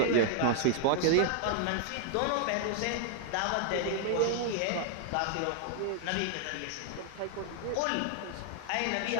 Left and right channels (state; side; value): different; both; correlation -0.01